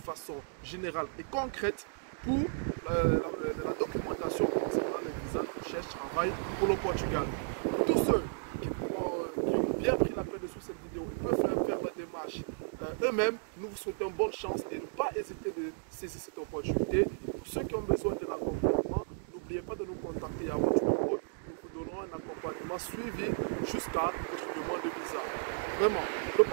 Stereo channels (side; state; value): left; silent; digital silence